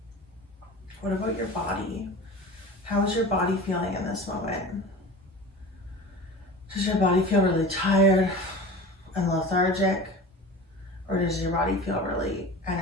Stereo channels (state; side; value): normal; both; correlation 0.35